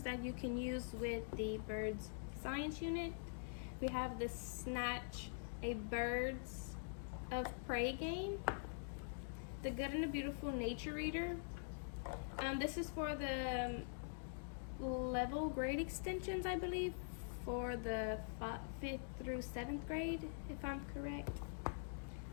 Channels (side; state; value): right; silent; digital silence